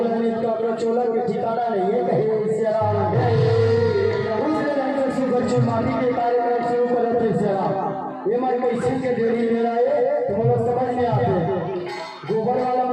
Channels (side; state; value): both; identical; correlation 1.00